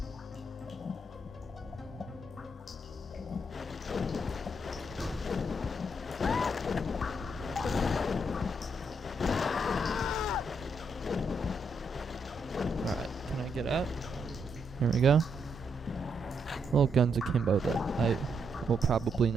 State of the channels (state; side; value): normal; both; correlation 0.77